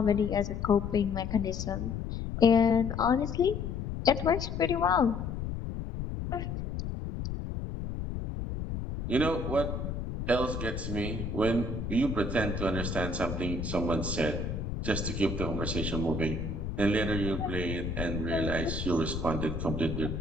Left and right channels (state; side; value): noise; left; rumble, 4 dB below the sound